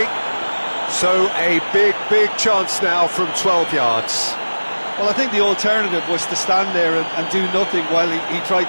So a big chance now from 12 yards. Well, I think the alternative was to stand there and do nothing while he tried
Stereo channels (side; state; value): both; inverted; correlation -1.00